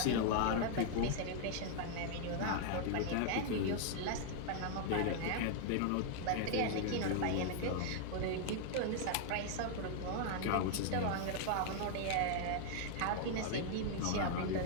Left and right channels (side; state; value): both; different; correlation -0.01